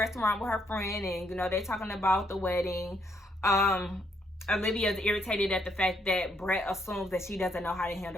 with her friend, and, you know, they're talking about the wedding. Olivia is irritated at the fact that Brett assumes that she doesn't know how to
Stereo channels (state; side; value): normal; both; correlation 0.73